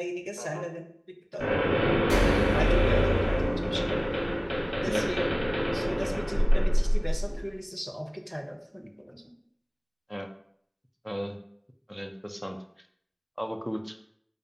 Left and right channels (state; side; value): identical; both; correlation 1.00